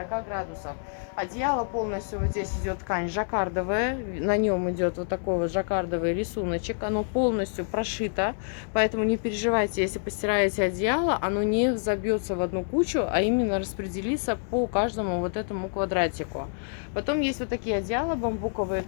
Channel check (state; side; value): silent; right; digital silence